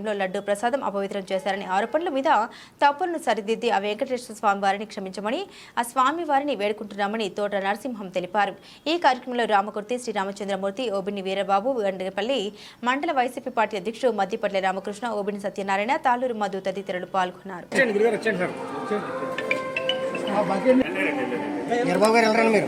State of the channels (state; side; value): identical; both; correlation 1.00